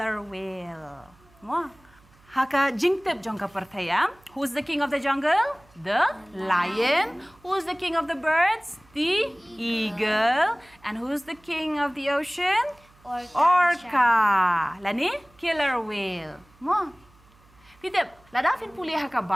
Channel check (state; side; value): noise; right; hum, 29 dB below the sound